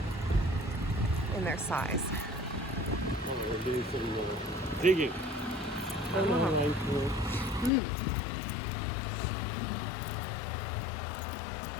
in their size. Oh, we're doing some digging.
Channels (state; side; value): drops out; right; at 7.7 s